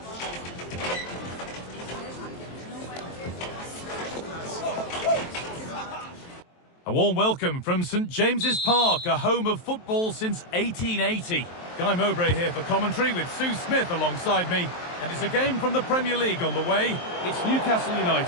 A warm welcome from St James's Park, a home of football since 1880. Guy Mowbray here for commentary with Sue Smith alongside me. And it's a game from the Premier League on the way. It's Newcastle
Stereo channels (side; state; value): right; late; 23 ms